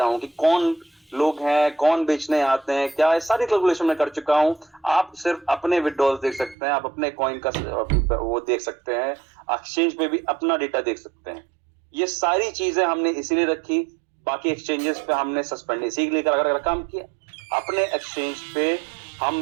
हूँ कि कौन लोग हैं, कौन बेचने आते हैं, क्या है, सारी कैलकुलेशन मैं कर चुका हूँ। आप सिर्फ अपने विड्रॉल देख सकते हैं, आप अपने कॉइन का वो देख सकते हैं, एक्सचेंज पे भी अपना डेटा देख सकते हैं। ये सारी चीजें हमने इसीलिए रखी, बाकी एक्सचेंजेस पे हमने सस्पेंड इसीलिए अगर काम किया। अपने एक्सचेंज पे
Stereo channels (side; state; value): left; drops out; at 6.6 s